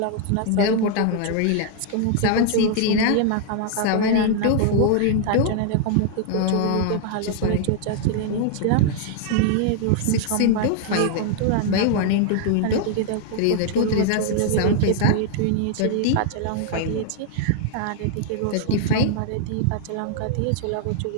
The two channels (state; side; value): different; both; correlation -0.01